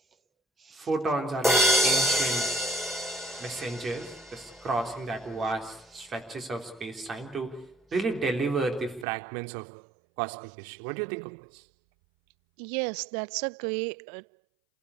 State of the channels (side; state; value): left; drops out; at 9.1 s